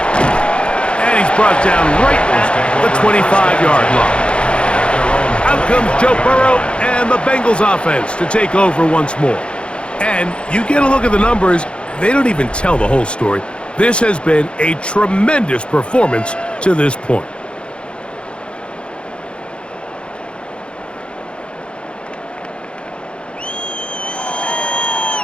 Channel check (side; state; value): right; late; 0.057 ms